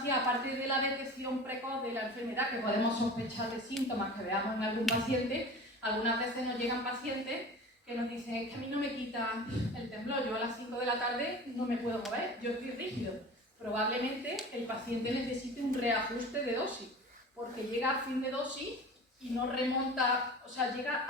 aparte de la detección precoz de la enfermedad, que podemos sospechar de síntomas que veamos en algún paciente, algunas veces nos llegan pacientes que nos dicen, es que a mí no me quita el temblor, yo a las 5 de la tarde no me puedo mover, yo estoy rígido. Probablemente el paciente necesite un reajuste de dosis, porque llega a fin de dosis y no remonta, o sea, llega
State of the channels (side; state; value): both; normal; correlation 0.37